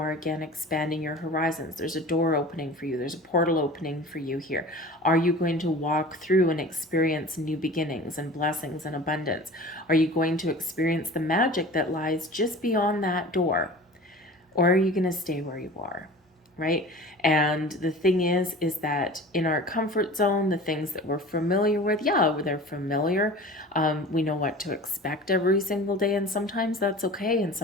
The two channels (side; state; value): both; normal; correlation 0.39